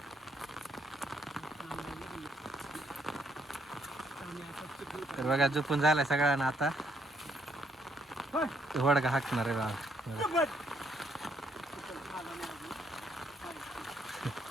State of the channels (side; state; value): both; normal; correlation 0.71